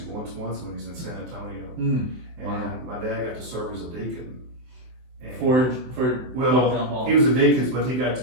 once when he was in San Antonio. Mm. And Wow. my dad got to serve as a deacon. And For well, Paul. he was a deacon, but he got to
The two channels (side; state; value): left; late; 24 ms